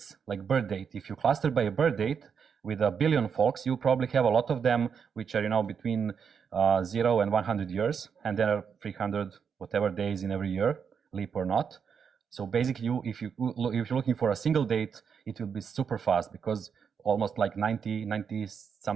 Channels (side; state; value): left; quieter; 6.7 dB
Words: like birth date. If you cluster by a birth date with 1 billion folks, you probably have a lot of them which are between 0 and 100 years, and there are 300 whatever days in every year, leap or not. So basically, if you're looking for a single date, it will be super fast, because almost like 90